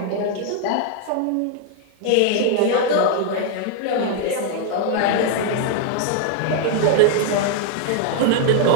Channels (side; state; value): both; different; correlation 0.00